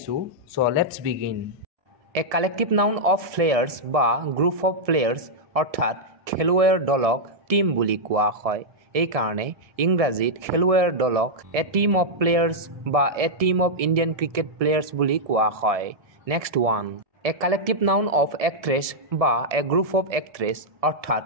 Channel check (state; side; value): late; left; 1.7 ms